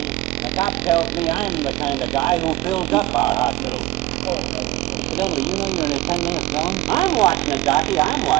And the cop tells me I'm the kind of guy who fills up our hospital. Incidentally, you know you're in a 10-minute zone? I'm watching it, Docky. I'm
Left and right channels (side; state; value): left; quieter; 17.6 dB